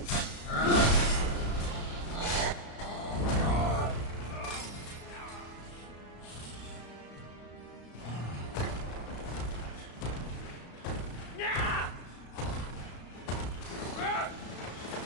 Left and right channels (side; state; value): right; late; 34 ms